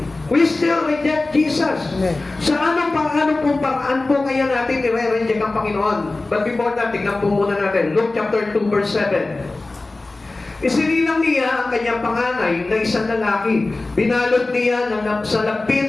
We still reject Jesus. Amen. Sa anong paraan po kaya natin i-reject ang Panginoon? But before that, tignan po muna natin. Luke chapter 2 verse 7. Isinilang niya ang kanyang panganay na isang lalaki. Binalot niya sa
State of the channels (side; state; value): right; quieter; 3.2 dB